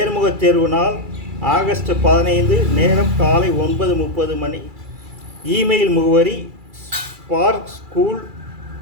தேர்வு நாள் ஆகஸ்ட் 15, நேரம் காலை 9:30 மணி. இமெயில் முகவரி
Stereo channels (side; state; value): left; late; 2.3 ms